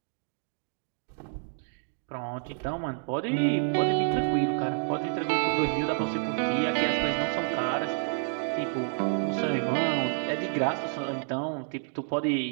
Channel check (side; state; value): left; silent; 59 dB below the other